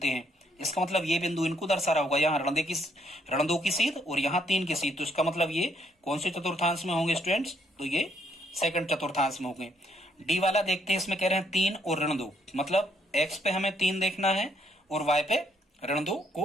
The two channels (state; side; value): normal; both; correlation 0.70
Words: हैं। इसका मतलब ये बिंदु इनको दर्शा रहा होगा, यहाँ ऋण 2 की सीध और यहाँ 3 की सीध, तो इसका मतलब ये कौन से चतुर्थांश में होंगे स्टूडेंट्स, तो ये सेकंड चतुर्थांश में होंगे। डी वाला देखते हैं, इसमें कह रहे हैं 3 और ऋण 2, मतलब x पे हमें 3 देखना है और y पे ऋण 2